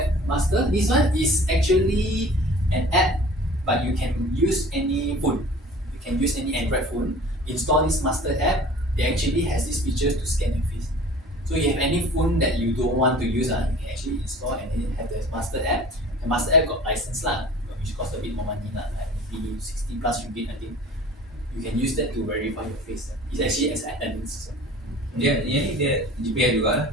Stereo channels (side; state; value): both; normal; correlation 0.44